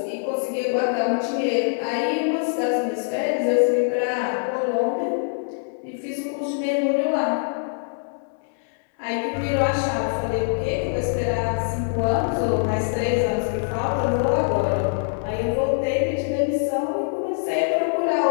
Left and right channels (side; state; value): right; silent; digital silence